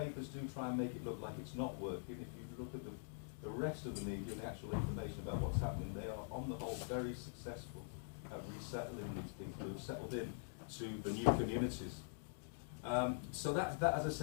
do try and make it look like it's not working. If you look at the rest of the media and the actual information about what's happening, they are on the whole very successful at resettling these people who've settled in to the new communities. So that, as I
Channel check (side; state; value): right; silent; digital silence